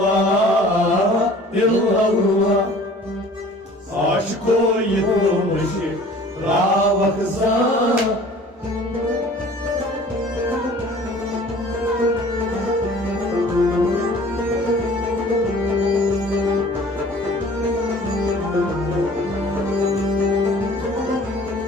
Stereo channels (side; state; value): both; normal; correlation 0.48